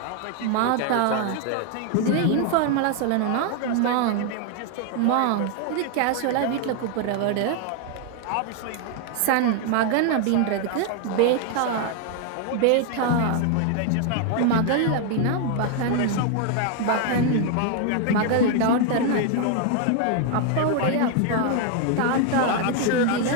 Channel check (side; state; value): both; different; correlation 0.00